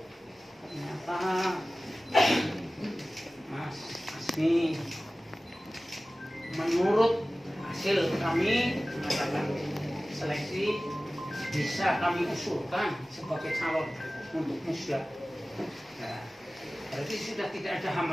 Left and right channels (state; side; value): normal; both; correlation 0.97